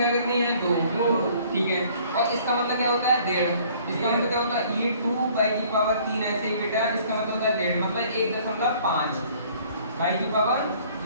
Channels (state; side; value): inverted; both; correlation -0.56